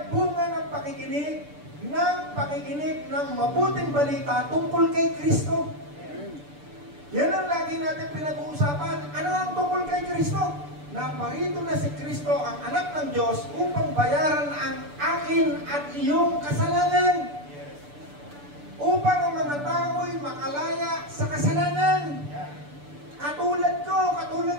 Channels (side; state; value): left; late; 6.8 ms